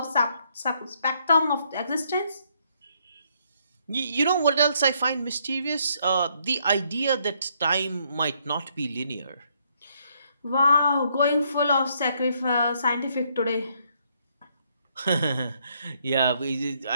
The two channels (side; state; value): both; inverted; correlation -0.71